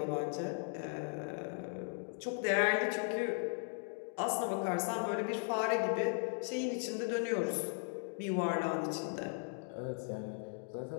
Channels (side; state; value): right; silent; 53 dB below the other